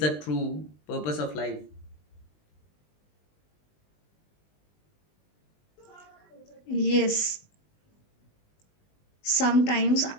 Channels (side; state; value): right; late; 20 ms